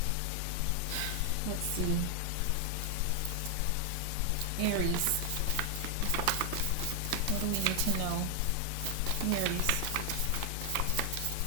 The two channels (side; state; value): both; different; correlation 0.00